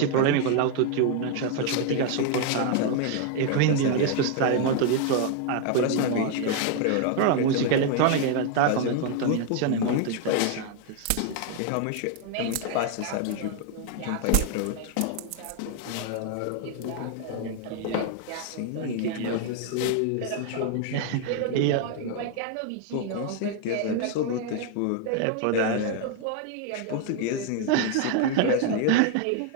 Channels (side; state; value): both; different; correlation 0.00